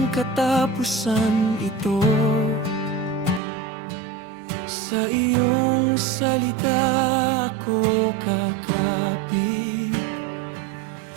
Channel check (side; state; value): left; drops out; at 3.4 s